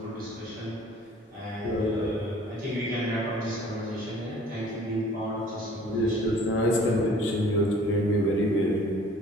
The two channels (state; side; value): normal; both; correlation 0.52